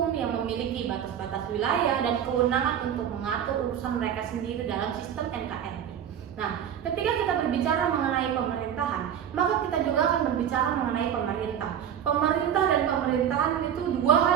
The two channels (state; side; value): quieter; left; 9.2 dB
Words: yang memiliki batas-batas wilayah dan kewenangan untuk mengatur urusan mereka sendiri dalam sistem NKRI. Nah, ketika kita berbicara mengenai pemerintahan, maka kita juga akan berbicara mengenai pemerintah. Pemerintah dan pemerintahan itu dua hal